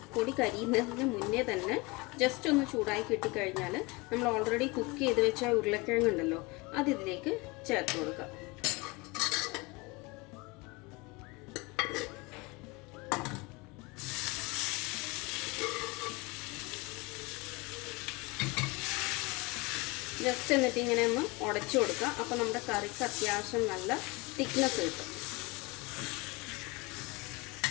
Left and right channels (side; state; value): right; quieter; 25.1 dB